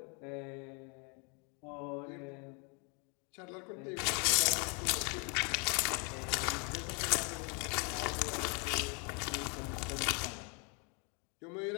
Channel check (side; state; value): right; quieter; 35.0 dB